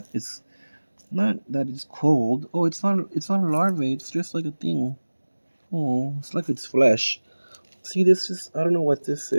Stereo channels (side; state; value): both; inverted; correlation -1.00